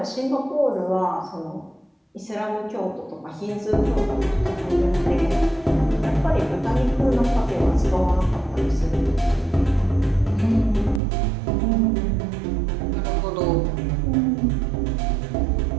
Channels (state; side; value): drops out; left; at 11.0 s